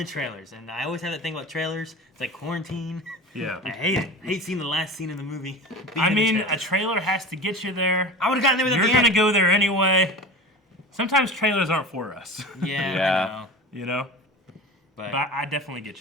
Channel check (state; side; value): normal; both; correlation 0.33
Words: trailers, and I always have that thing about trailers. It's like quarantine. Yeah. I hate it. I hate seeing the last scene in the movie. I being in mean, the a trailer. trailer has to get you there. I would have gotten there without You're the gonna ant. go there anyway. Sometimes trailers aren't for us, Yeah, Yeah. I know. you know. But, But I definitely